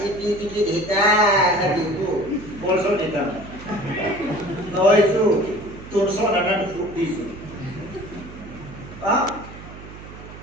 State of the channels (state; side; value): noise; right; hum, 15 dB below the sound